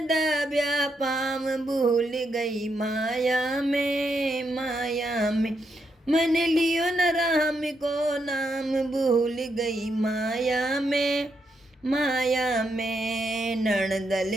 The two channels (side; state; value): both; normal; correlation 0.80